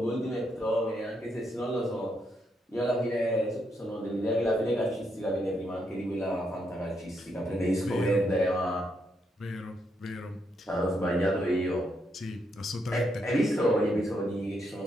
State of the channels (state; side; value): normal; both; correlation 0.78